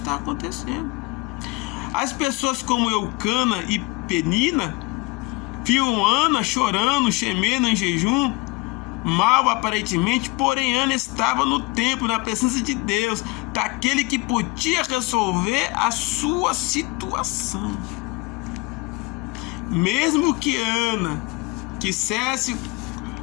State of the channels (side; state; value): right; quieter; 25.0 dB